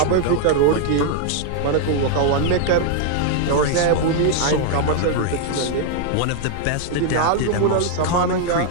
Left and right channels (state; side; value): different; both; correlation 0.00